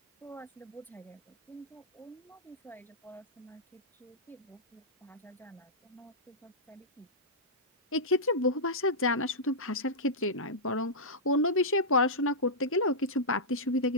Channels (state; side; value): normal; both; correlation -0.12